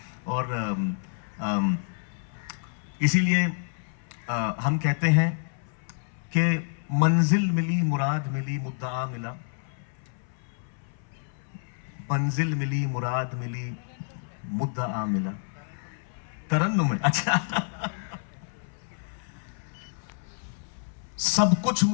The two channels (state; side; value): silent; right; 59 dB below the other